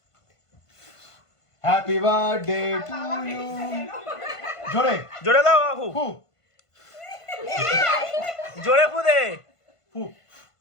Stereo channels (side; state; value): right; late; 1.5 ms